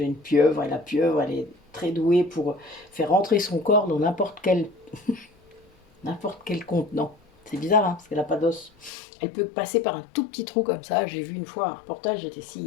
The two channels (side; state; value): right; drops out; at 8.9 s